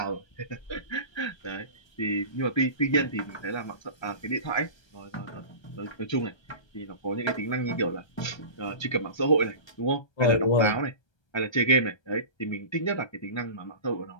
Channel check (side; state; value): right; late; 1.3 ms